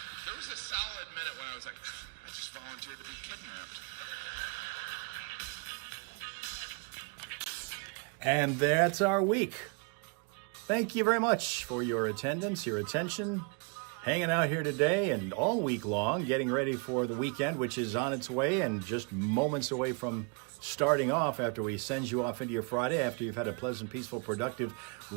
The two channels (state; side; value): quieter; left; 35.3 dB